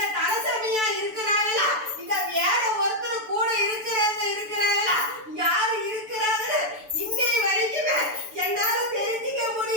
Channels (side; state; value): left; late; 6.9 ms